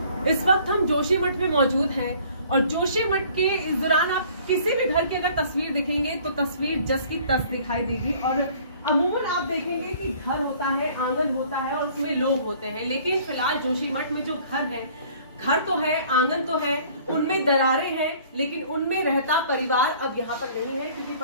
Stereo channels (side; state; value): both; inverted; correlation -0.54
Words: इस वक्त हम जोशीमठ में मौजूद हैं और जोशीमठ के इस दौरान आप किसी भी घर की अगर तस्वीर दिखेंगे तो तस्वीर जस की तस दिखाई देगी। और अमूमन आप देखेंगे कि घर होता है, आंगन होता है और उसमें लोग होते हैं, लेकिन फिलहाल जोशीमठ में जो घर है, घर तो है, आंगन तो है, उनमें दरारें हैं, लेकिन उनमें रहता परिवार अब यहाँ पर नहीं है, क्योंकि